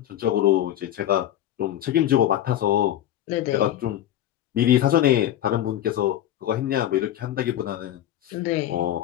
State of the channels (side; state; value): right; quieter; 12.1 dB